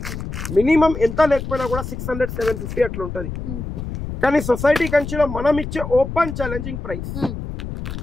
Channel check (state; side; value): noise; left; rumble, 7 dB below the sound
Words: మినిమం ఎంత లేకపోయినా కూడా 600 750 అట్లా ఉంటది కానీ సొసైటీ కంచిలో మనం ఇచ్చే open challenging price